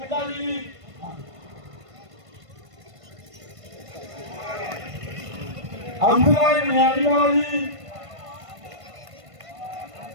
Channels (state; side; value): late; left; 1.5 ms